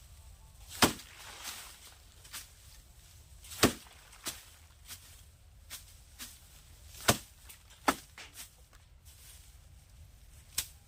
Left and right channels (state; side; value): identical; both; correlation 1.00